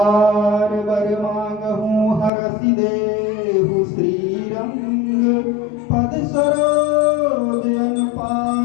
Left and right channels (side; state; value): right; drops out; at 2.3 s